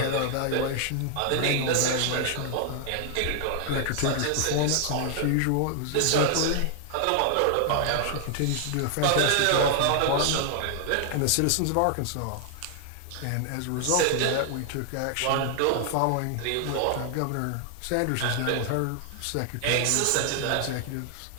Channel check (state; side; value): different; both; correlation 0.00